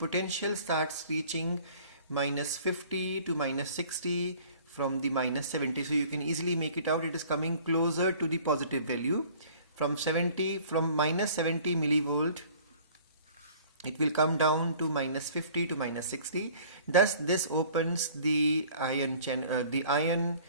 starts reaching -50 to -60 from the -70. So you can easily make it out. It is coming closer to the positive value. From -70 millivolt, it will come down to -50 to -60. Thus this opens the ion channels,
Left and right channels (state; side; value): inverted; both; correlation -0.51